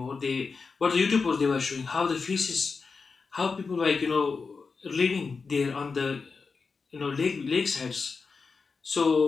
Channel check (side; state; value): right; quieter; 4.8 dB